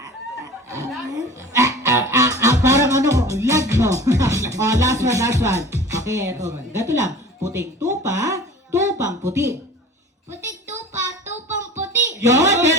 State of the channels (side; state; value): both; normal; correlation 0.40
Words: Parang ano, lag mo. O, last one. Okay, eto. Gato lang. Puting tupa, tupang puti. Puting tupa, tupang puti. Yun,